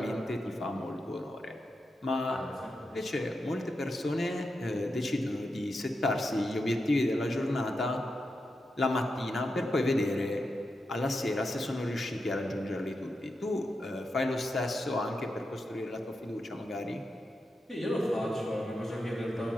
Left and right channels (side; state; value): both; normal; correlation 0.87